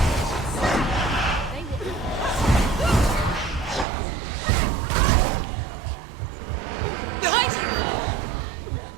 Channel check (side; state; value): left; drops out; at 3.9 s